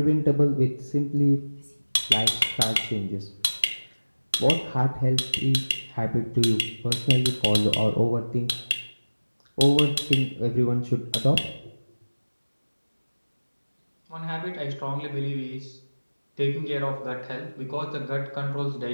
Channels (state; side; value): inverted; both; correlation -1.00